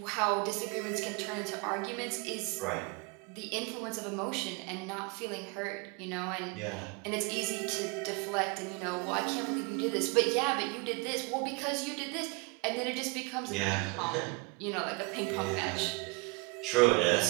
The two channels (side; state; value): left; quieter; 27.8 dB